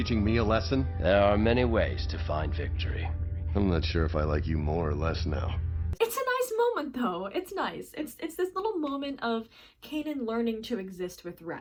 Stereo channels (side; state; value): both; identical; correlation 1.00